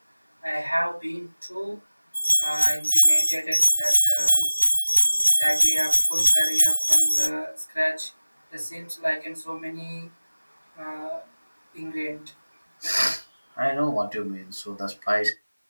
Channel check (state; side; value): inverted; both; correlation -1.00